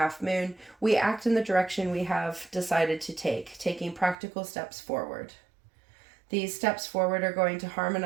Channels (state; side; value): drops out; left; at 4.2 s